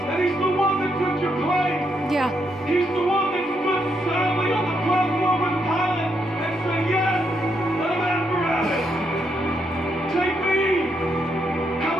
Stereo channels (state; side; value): normal; both; correlation 0.78